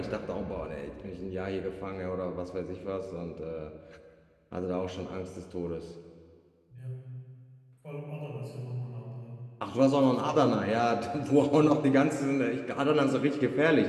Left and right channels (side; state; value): both; identical; correlation 1.00